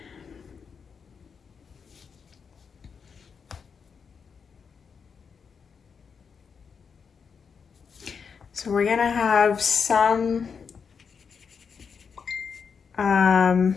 So we're gonna have some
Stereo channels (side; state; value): right; quieter; 6.1 dB